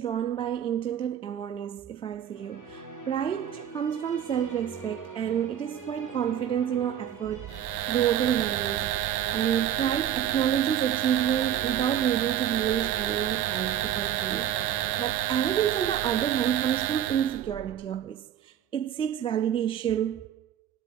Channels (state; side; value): quieter; left; 10.0 dB